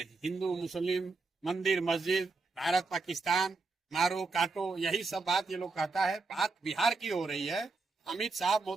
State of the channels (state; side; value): quieter; left; 3.9 dB